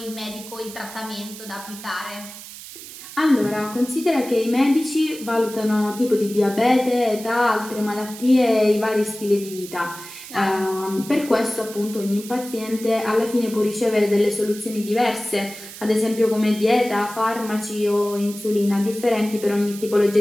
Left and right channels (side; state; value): right; noise; hiss, 14 dB below the sound